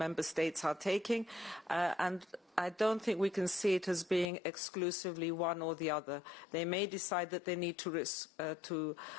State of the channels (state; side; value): drops out; right; at 4.2 s